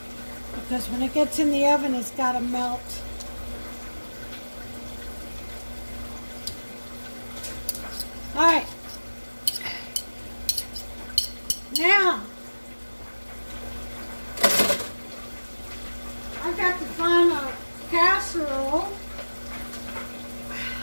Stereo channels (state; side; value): inverted; both; correlation -1.00